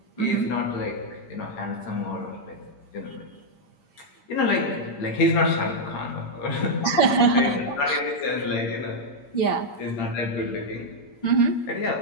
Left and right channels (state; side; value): late; right; 8.0 ms